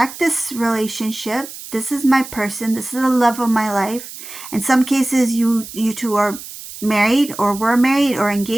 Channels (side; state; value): right; noise; hiss, 13 dB below the sound